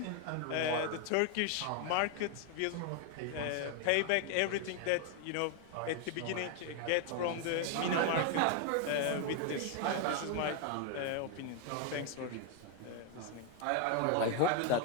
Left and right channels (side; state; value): both; different; correlation 0.01